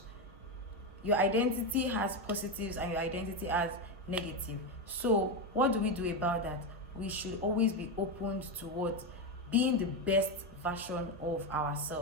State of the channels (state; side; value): normal; both; correlation 0.11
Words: your identity has positives and your identity has negative. So what do we do about that? We should always be open to being the best version of